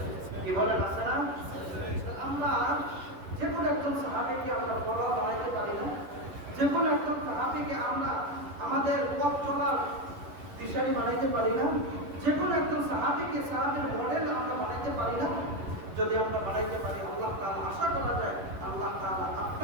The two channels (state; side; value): late; left; 11 ms